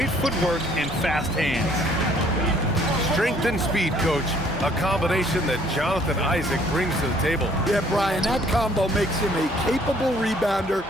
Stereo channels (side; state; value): both; normal; correlation 0.61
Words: footwork and fast hands. Strength and speed, coach. A combination that Jonathan Isaac brings to the table. Yeah, Brian, that combo makes him a capable rebounder.